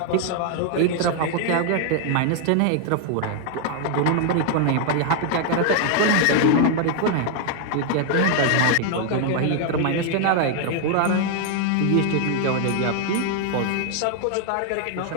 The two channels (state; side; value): different; both; correlation 0.00